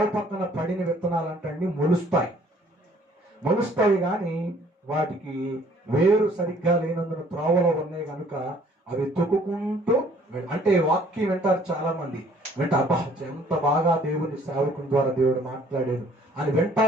పక్కన పడిన విత్తనాలంటే మొలుస్తాయి కానీ వాటికి వేరు సరిగ్గా లేనందున త్రోవలో ఉన్నాయి కనుక అవి తొక్కుకుంటూ, అంటే వాక్యం వింటారు చాలా మంది. అబ్బా ఎంత బాగా దేవుని సేవకుని ద్వారా దేవుడు మాట్లాడారు అని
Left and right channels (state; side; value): normal; both; correlation 0.59